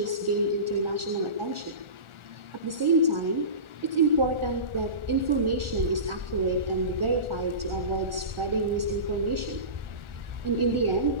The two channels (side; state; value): left; late; 1.4 ms